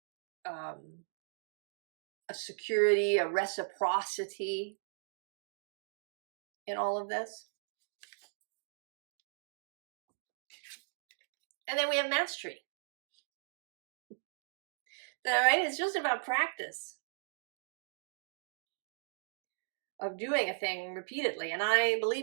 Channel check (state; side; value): silent; left; digital silence